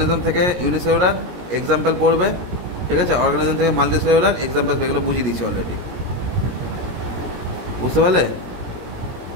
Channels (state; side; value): late; left; 17 ms